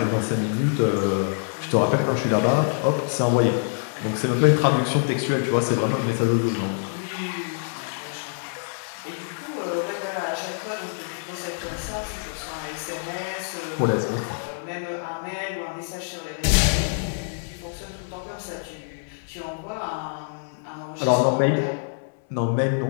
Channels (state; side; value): silent; right; 61 dB below the other